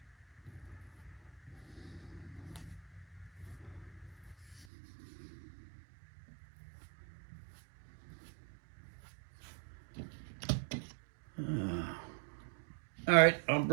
All right, I'll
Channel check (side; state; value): left; drops out; at 4.7 s